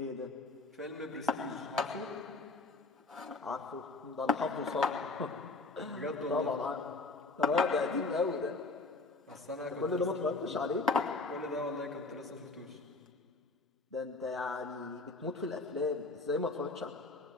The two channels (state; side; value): quieter; right; 3.5 dB